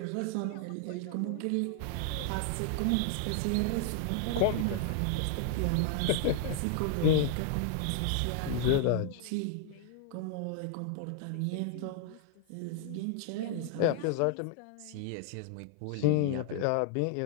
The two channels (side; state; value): both; different; correlation 0.00